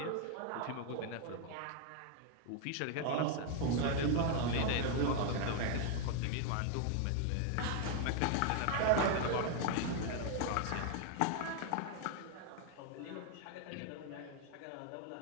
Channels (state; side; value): different; both; correlation 0.00